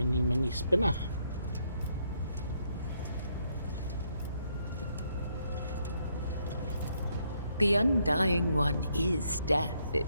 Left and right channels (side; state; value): both; inverted; correlation -0.74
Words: spinner. The Undying One is death